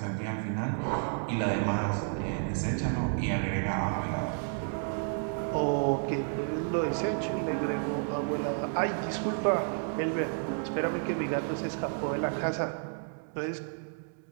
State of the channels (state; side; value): silent; left; 57 dB below the other